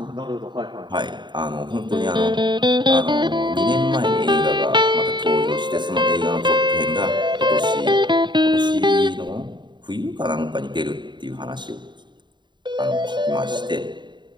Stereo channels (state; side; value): late; left; 0.22 ms